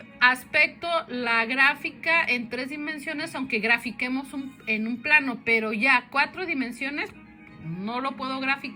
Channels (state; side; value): identical; both; correlation 1.00